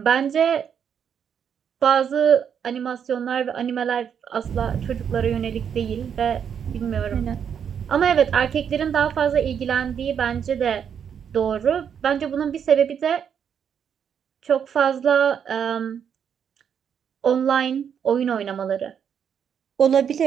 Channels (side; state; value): left; quieter; 7.9 dB